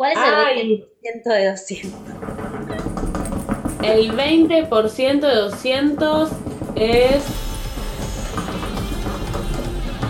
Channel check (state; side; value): identical; both; correlation 1.00